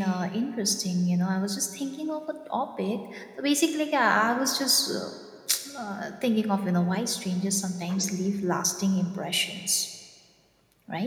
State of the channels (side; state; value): both; identical; correlation 1.00